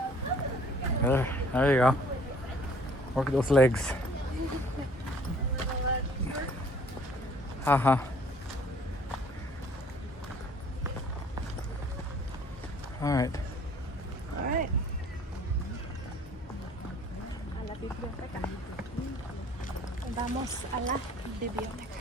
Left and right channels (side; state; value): both; normal; correlation 0.55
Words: There you go. Work those legs. Haha. All right. All right. A la biblioteca. Vamos a la